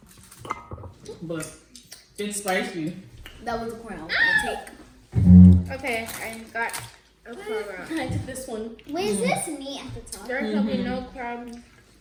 But it's spicy. That was a corn I was gonna take. Okay, I got a crab. I took this one. Wait, is this meat at the top? There shall be no crabs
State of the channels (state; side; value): identical; both; correlation 1.00